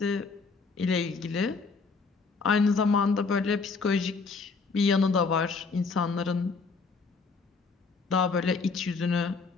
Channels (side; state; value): right; quieter; 4.5 dB